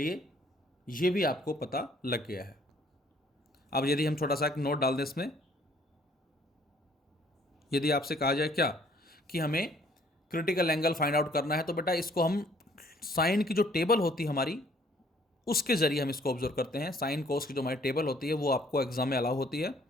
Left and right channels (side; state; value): both; normal; correlation 0.60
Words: ये भी आपको पता लग गया है। अब यदि हम छोटा सा एक नोट डाल दें इसमें, यदि आपसे कहा जाए क्या कि हमें क्रिटिकल एंगल फाइंड आउट करना है, तो बेटा इसको हम साइन की जो टेबल होती है हमारी उसके जरिए हम इसको ऑब्जर्व करते हैं। साइन कोस की जो हमारी टेबल होती है वो आपको एग्जाम में अलाउ होती है।